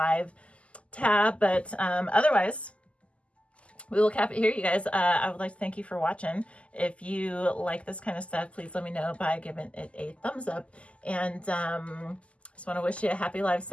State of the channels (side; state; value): right; late; 0.059 ms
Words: tab, but otherwise we will cap it here, you guys. I would like to thank you for watching. If you like this kind of stuff, please let me know by giving it a thumbs up. And just want to wish you a happy live